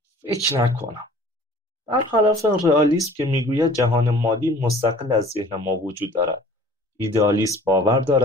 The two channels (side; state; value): both; normal; correlation 0.49